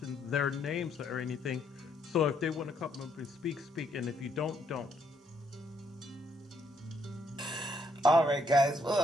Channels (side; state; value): both; normal; correlation 0.72